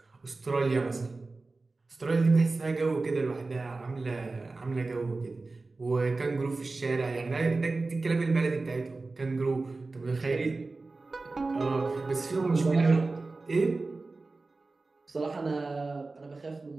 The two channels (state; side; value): quieter; left; 3.5 dB